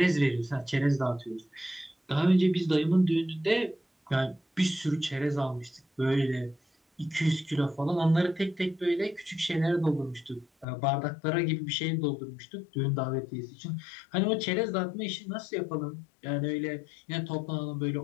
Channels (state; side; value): drops out; right; at 10.7 s